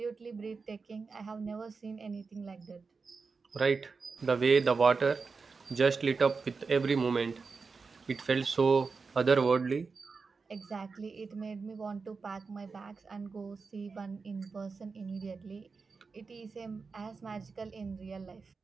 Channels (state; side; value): quieter; left; 4.7 dB